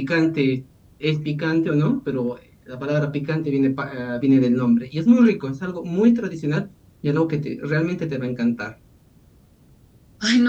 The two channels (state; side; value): identical; both; correlation 1.00